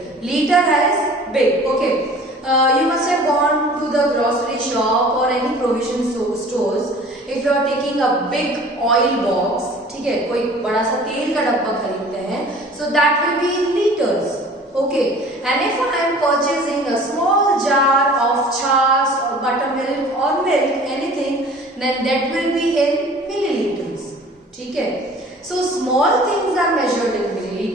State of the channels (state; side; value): normal; both; correlation 0.47